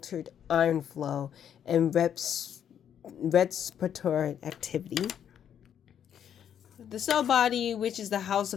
iron flow and respiratory activity. The cell body, which is the house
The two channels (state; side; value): quieter; right; 9.1 dB